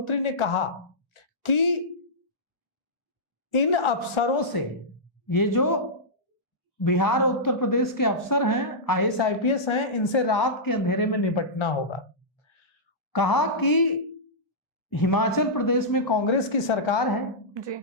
ने कहा कि इन अफसरों से, ये जो बिहार और उत्तर प्रदेश के अफसर हैं, आईएएस आईपीएस हैं, इनसे रात के अंधेरे में निपटना होगा। कहा कि हिमाचल प्रदेश में कांग्रेस की सरकार है जी,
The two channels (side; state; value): both; normal; correlation -0.13